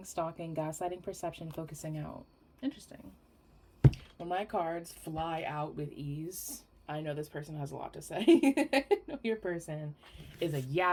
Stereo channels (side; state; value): both; identical; correlation 1.00